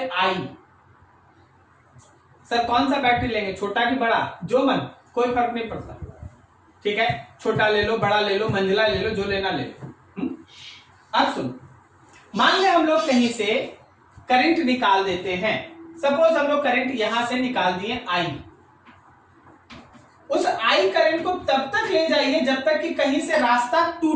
आई। सर कौन सा बैटरी लेंगे, छोटा कि बड़ा, जो मन, कोई फर्क नहीं पड़ता। ठीक है, छोटा ले लो, बड़ा ले लो, मंझला ले लो, जो लेना ले लो। अब सुन, मान ले हम लोग कहीं से करंट निकाल देते हैं। सपोज हम लोग करंट यहां से निकाल दिए आई। उस आई करंट को तब तक ले जाइए जब तक कि कहीं से रास्ता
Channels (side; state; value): both; identical; correlation 1.00